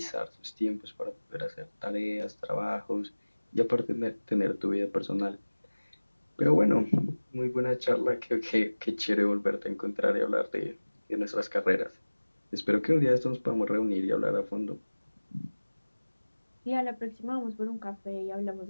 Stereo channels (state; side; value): inverted; both; correlation -1.00